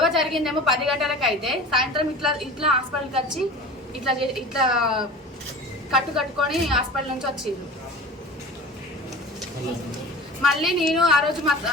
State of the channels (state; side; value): normal; both; correlation 0.37